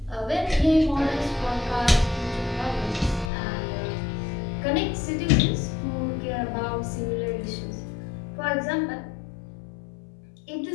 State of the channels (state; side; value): drops out; right; at 3.3 s